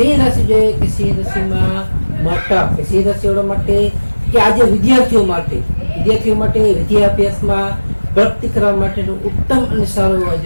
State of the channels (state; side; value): inverted; both; correlation -1.00